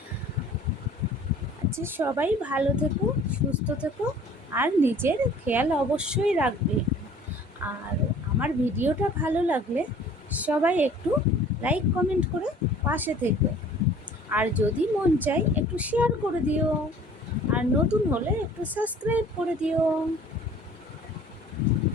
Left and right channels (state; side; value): normal; both; correlation 0.50